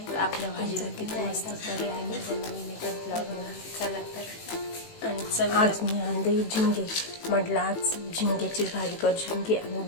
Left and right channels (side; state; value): right; late; 18 ms